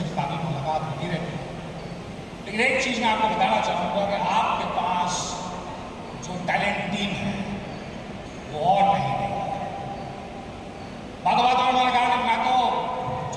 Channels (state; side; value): identical; both; correlation 1.00